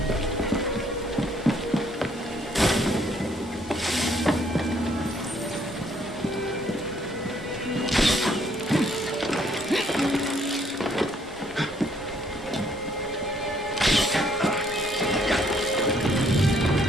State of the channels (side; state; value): both; normal; correlation 0.66